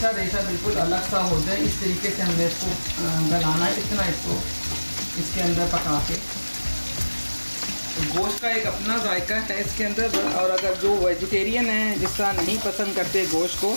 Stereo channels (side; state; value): both; inverted; correlation -1.00